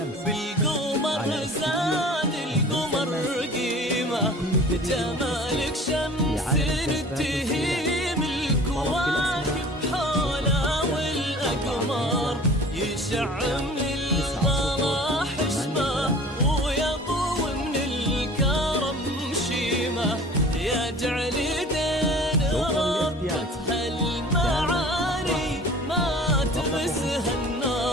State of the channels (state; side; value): normal; both; correlation 0.45